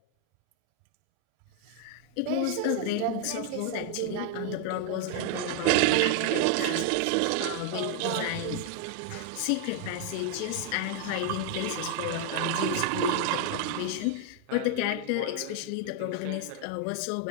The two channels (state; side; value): different; both; correlation 0.00